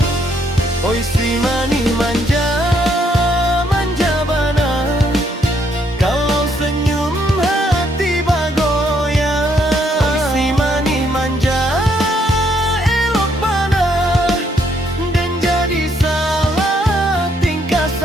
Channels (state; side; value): normal; both; correlation 0.71